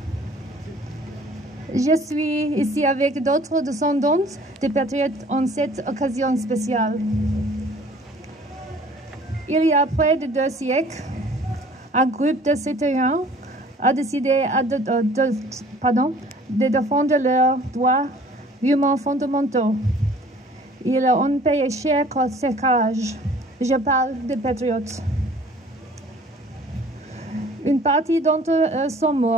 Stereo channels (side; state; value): both; normal; correlation 0.52